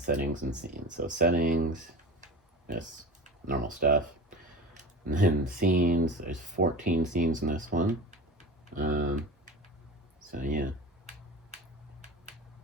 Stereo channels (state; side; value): normal; both; correlation 0.33